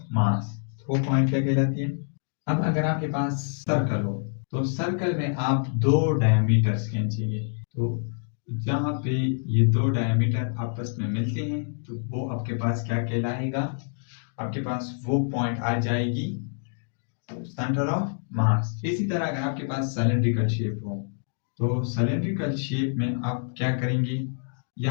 मास। वो पॉइंट क्या कहलाती है। अब अगर आपके पास सर्कल हो तो सर्कल में आप दो डायमीटर्स खींचेंगे, तो जहाँ पे ये दो डायमीटर आपस में मिलते हैं तो वो आपके पास क्या कहलाएगा, आपके पास वो पॉइंट आ जाएगी सेंटर ऑफ मास। इसी तरह अगर आपके पास सिलेंड्रिकल शेप हो तो सिलेंड्रिकल शेप में आप क्या करेंगे,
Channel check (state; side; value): silent; right; digital silence